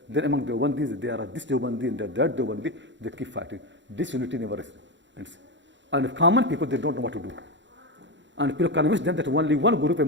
Then among the Deobandis, there are this Deobandi and that Deobandi, they keep fighting. Disunity never ends. And common people, they don't know what to do. And people convince them that only one group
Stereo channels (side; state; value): left; late; 0.53 ms